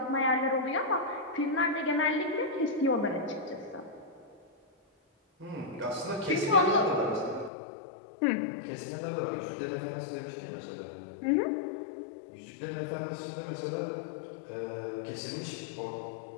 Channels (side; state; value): right; drops out; at 7.5 s